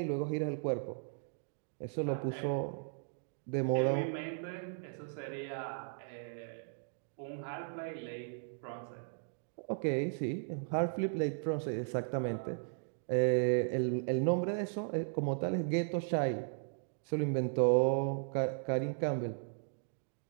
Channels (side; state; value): left; silent; digital silence